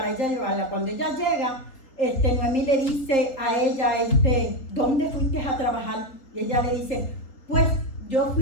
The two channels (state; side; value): late; right; 3.7 ms